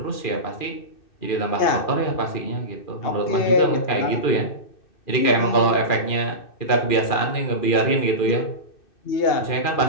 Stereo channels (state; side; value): late; right; 2.4 ms